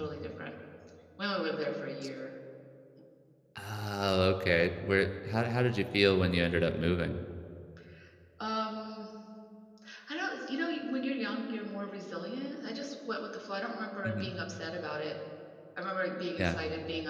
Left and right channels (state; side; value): identical; both; correlation 1.00